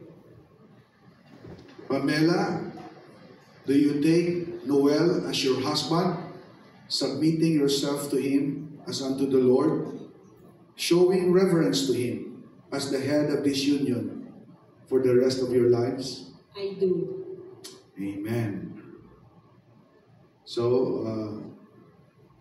Pamela, do you take Noel as your husband, submitting yourself to him as unto the Lord, showing reverence to him as the head of this union for the rest of your lives? I do. Amen. So,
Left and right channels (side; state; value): both; identical; correlation 1.00